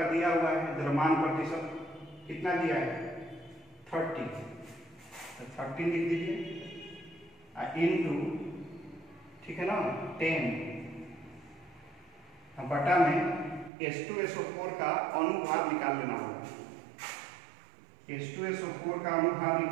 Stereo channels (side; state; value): left; drops out; at 13.7 s